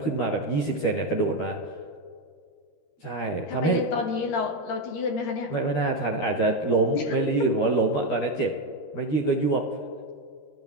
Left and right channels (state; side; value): late; right; 12 ms